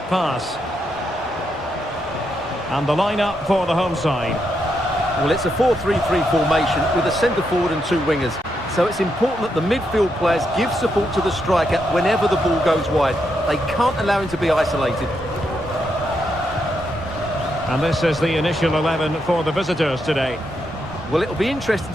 pass? And the lineup for the home side. Well, it's a 4-3-3 formation with a centre forward and 2 wingers. So it's important that the midfield players give support to the striker whenever the ball goes wide. They can't allow him to be isolated. And this is the initial 11 for the visitors today. Well, it'll be interesting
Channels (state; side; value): normal; both; correlation 0.81